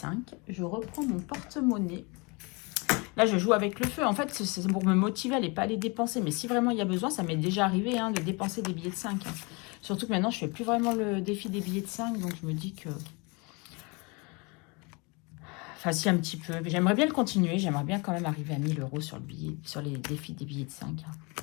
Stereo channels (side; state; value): right; quieter; 29.2 dB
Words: Je reprends mon porte-monnaie. Là, je joue avec le feu. En fait, c'est pour me motiver à ne pas les dépenser. Mais si vraiment il y a besoin, ça m'est déjà arrivé hein, de dépenser des billets de 5. Hein. Surtout que maintenant, je ne fais plus vraiment le défi des billets de 5. Donc, je me dis que... Enfin, si, un petit peu. J'aimerais bien le continuer. J'aimerais bien quand même arriver à 1000 euros sur, sur les défis des billets de 5. Hein.